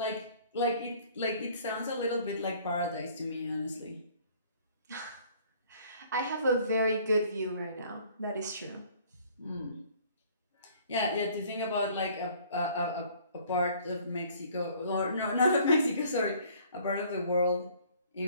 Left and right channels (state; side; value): inverted; both; correlation -0.55